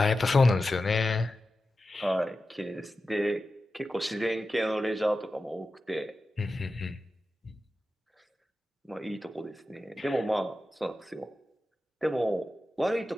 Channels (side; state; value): both; normal; correlation 0.92